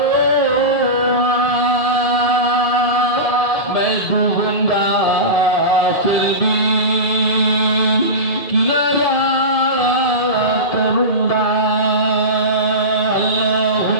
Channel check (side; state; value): right; late; 1.7 ms